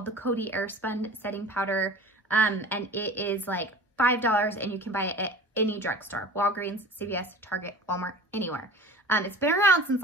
the Coty Airspun Setting Powder, and it is like $5, and you can buy it at any drugstore, Walgreens, CVS, Target, Walmart, anywhere. It's been around since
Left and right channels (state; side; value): normal; both; correlation 0.39